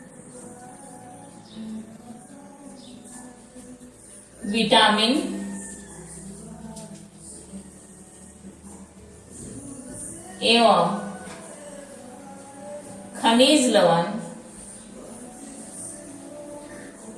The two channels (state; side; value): identical; both; correlation 1.00